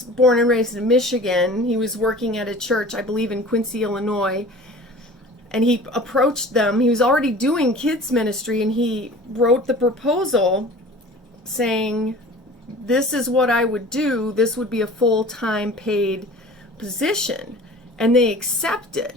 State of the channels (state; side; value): normal; both; correlation 0.42